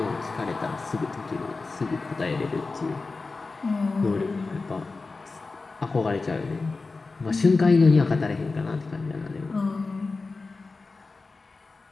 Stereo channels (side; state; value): right; quieter; 3.9 dB